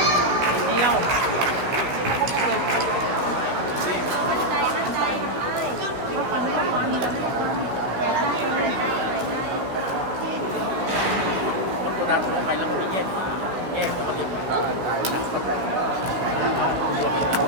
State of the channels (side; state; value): left; late; 16 ms